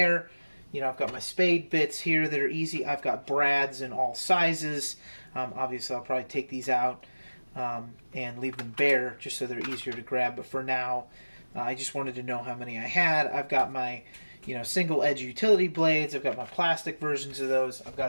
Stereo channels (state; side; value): inverted; both; correlation -1.00